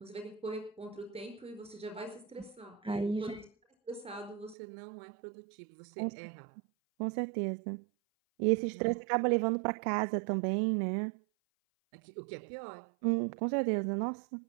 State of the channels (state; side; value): drops out; left; at 4.5 s